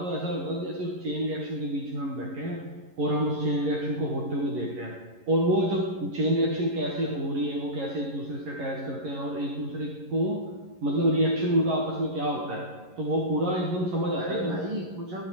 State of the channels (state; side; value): late; left; 11 ms